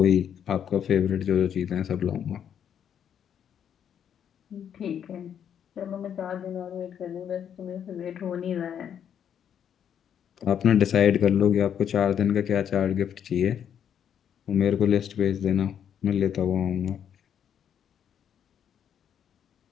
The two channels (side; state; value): right; quieter; 8.8 dB